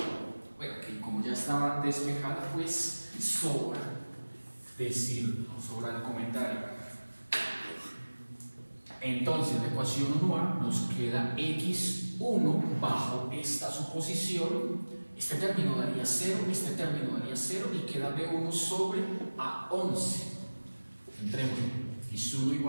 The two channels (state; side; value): inverted; both; correlation -1.00